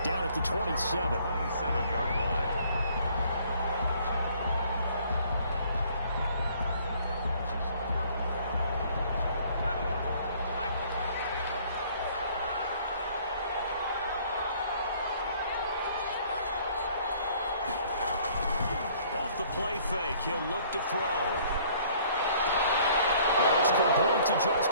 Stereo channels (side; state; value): both; inverted; correlation -0.58